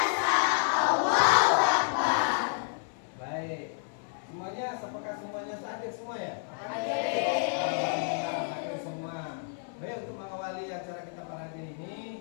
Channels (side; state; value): right; silent; 58 dB below the other